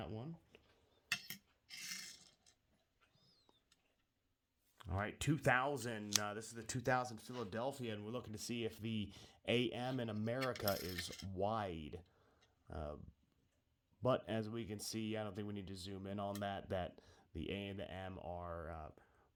one. All right, 2000, this is the 2000 Philadelphia, and we're looking to see if the AM in America is wide. But as we can see, I don't think we need to zoom in on that the A and the M are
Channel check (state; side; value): identical; both; correlation 1.00